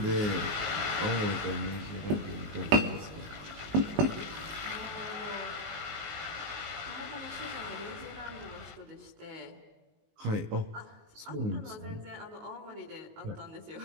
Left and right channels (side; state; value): left; late; 19 ms